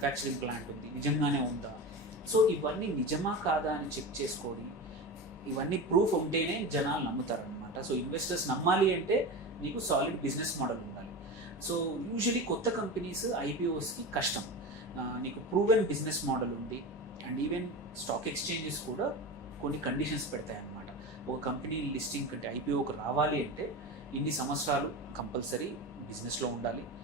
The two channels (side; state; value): both; normal; correlation 0.26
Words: ప్లాంట్ ఉంది, నిజంగానే ఉందా? సో ఇవన్నీ నిజమా కాదా అని చెక్ చేసుకోండి. ఇవన్నీ ప్రూఫ్ ఉంటేనే జనాలు నమ్ముతారనమాట. సో ఇన్వెస్టర్స్ నమ్మాలి అంటే నీకు సాలిడ్ బిజినెస్ మోడల్ ఉండాలి. సో యూజువలీ కొత్త కంపెనీస్ ఐపీఓస్కి కష్టం. నీకు ప్రూవెన్ బిజినెస్ మోడల్ ఉండి అండ్ ఈవెన్ స్టాక్ ఎక్స్చేంజెస్ కూడా కొన్ని కండిషన్స్ పెడతాయి అన్నమాట. ఒక కంపెనీ లిస్టింగ్ అంటే ఐపీఓకి రావాలి అంటే ఇన్ని సంవత్సరాలు కంపల్సరీ బిజినెస్లో ఉండాలి.